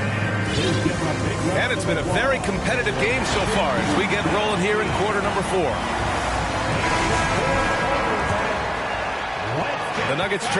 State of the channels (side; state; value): both; identical; correlation 1.00